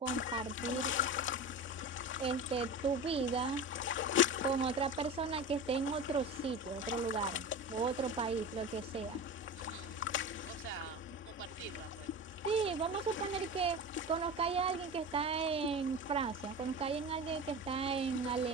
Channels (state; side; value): normal; both; correlation 0.29